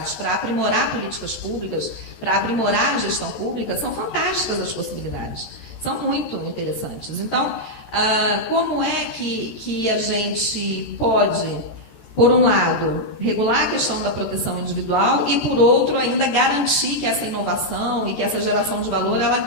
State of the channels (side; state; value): right; late; 14 ms